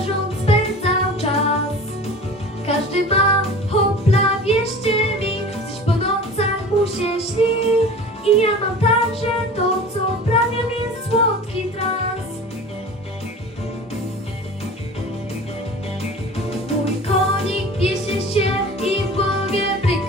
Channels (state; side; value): normal; both; correlation 0.38